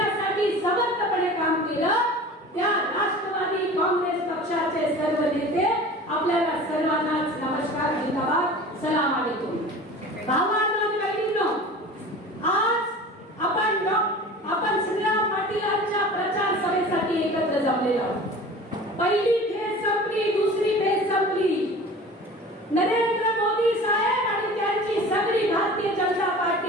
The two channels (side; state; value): both; normal; correlation 0.39